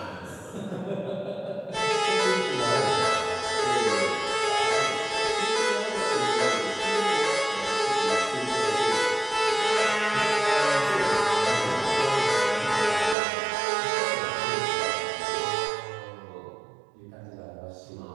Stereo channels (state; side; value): drops out; left; at 13.2 s